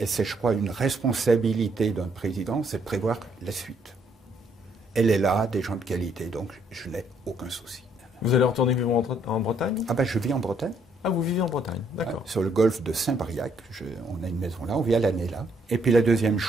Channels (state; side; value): normal; both; correlation 0.69